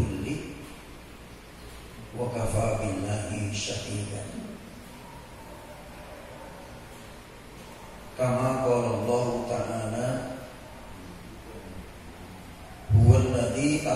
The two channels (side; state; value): both; identical; correlation 1.00